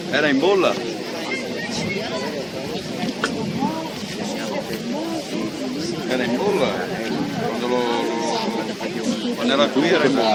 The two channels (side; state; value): both; identical; correlation 1.00